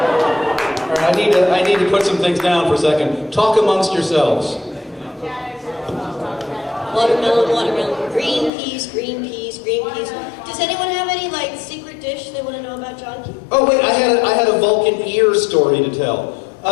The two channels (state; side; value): drops out; right; at 8.5 s